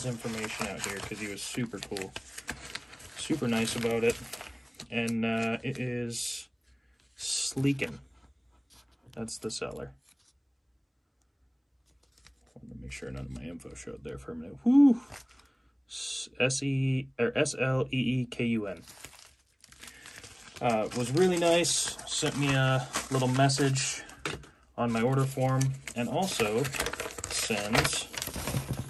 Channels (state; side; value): identical; both; correlation 1.00